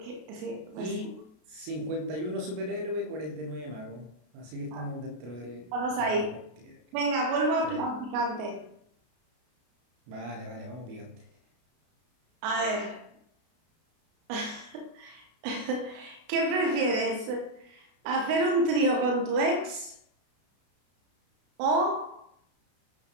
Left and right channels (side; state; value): left; late; 33 ms